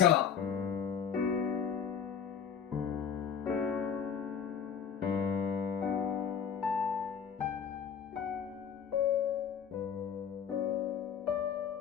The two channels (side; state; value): right; quieter; 7.5 dB